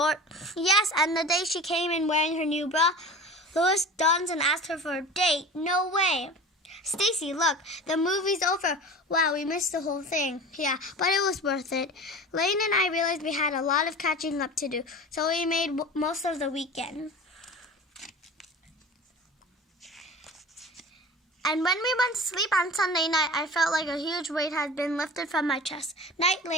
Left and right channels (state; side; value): normal; both; correlation 0.36